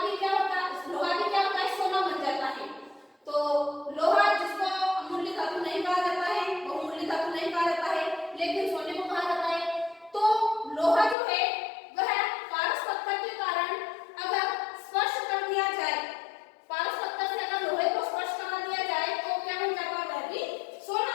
भी क्या होता है, लोहा भी क्या होता है, सोना बन जाता है। तो लोहा जिसको अमूल्य धातु नहीं कहा जाता है, बहुमूल्य धातु नहीं कहा जाता है, लेकिन सोने को कहा जाता है। तो लोहा जो है वह पारस पत्थर के कारण अगर स्पर्श कर दिया जाए, पारस पत्थर से अगर लोहे को स्पर्श करा दिया जाए तो क्या बन जाता है, वह भी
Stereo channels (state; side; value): drops out; right; at 11.2 s